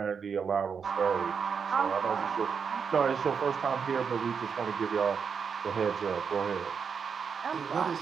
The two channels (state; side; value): quieter; left; 6.3 dB